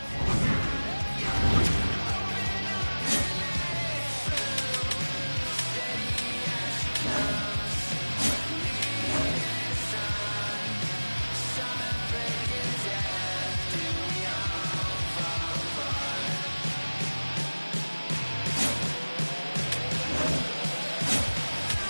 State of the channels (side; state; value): both; inverted; correlation -1.00